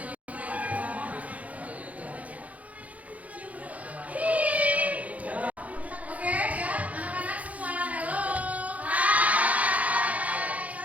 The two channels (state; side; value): late; left; 0.069 ms